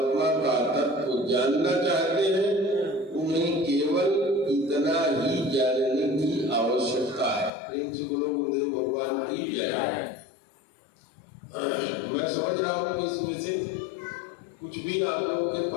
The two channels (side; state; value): right; drops out; at 7.5 s